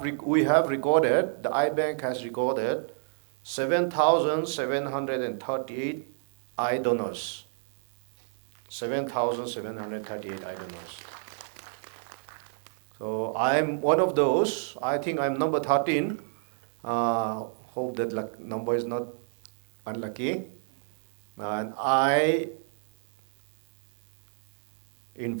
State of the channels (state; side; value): silent; left; digital silence